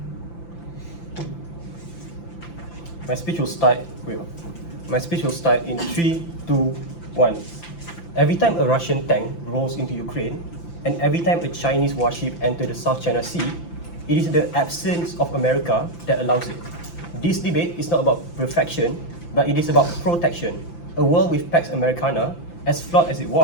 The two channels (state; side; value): late; right; 5.9 ms